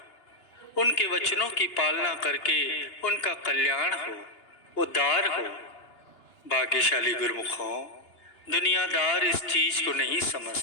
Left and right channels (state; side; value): late; right; 2.8 ms